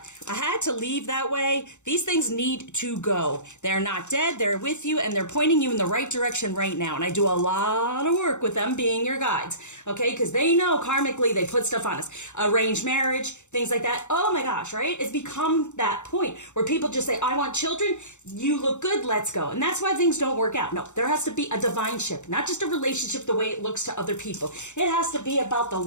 I had to leave that way. These things need to go. They're not dead. They're with you and they're pointing you in the right direction right now. And I do a lot of work with them being your guides. Okay, because they know karmically they put stuff on us. Arranged marriage, things like that. Oh my gosh, right? It's become that point where people just say, I want children. You look good. Let's go. And that's why things don't work out. No, there has to be a divine ship, not just a relationship the way it looks to other people. It has to be about the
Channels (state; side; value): late; right; 0.84 ms